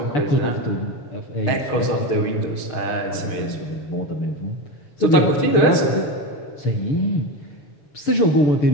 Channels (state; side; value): late; right; 6.6 ms